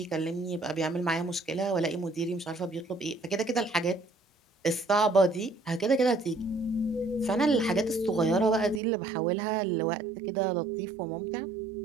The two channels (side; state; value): left; drops out; at 8.8 s